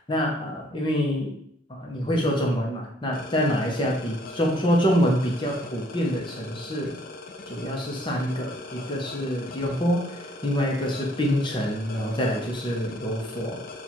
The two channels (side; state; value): both; normal; correlation 0.64